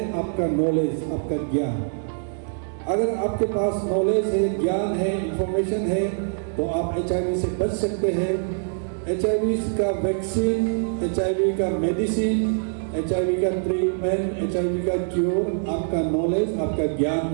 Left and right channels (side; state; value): left; silent; digital silence